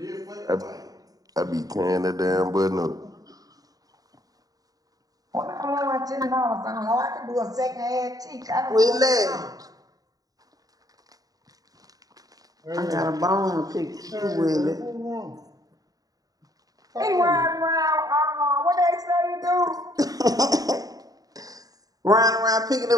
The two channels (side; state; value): left; late; 0.18 ms